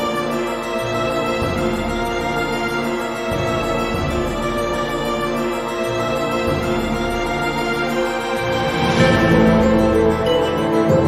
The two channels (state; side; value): identical; both; correlation 1.00